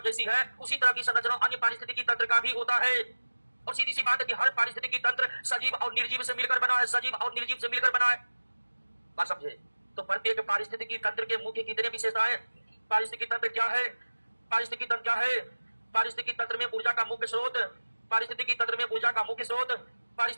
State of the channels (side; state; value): both; inverted; correlation -1.00